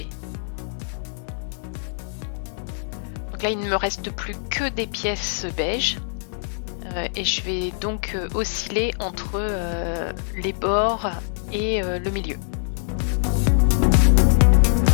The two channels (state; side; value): silent; right; digital silence